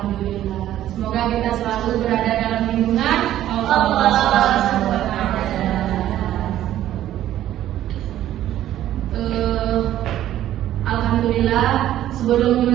Semoga kita selalu berada dalam lindungan Allah Allah. Subhanahu wa Ta'ala. Alhamdulillah. Sebelum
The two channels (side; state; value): left; quieter; 12.7 dB